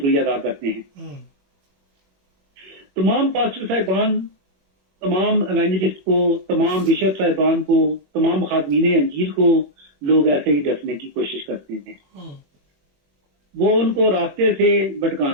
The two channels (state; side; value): late; left; 21 ms